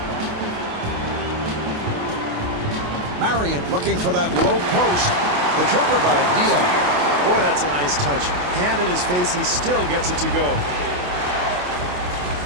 Marion looking for that low post. The jumper by Diaw. Boy, that's a nice touch. Hand in his face, he still gets it to go.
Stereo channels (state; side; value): late; left; 28 ms